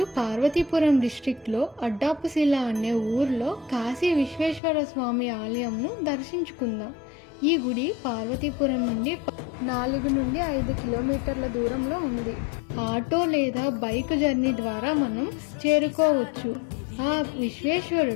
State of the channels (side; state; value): right; drops out; at 4.6 s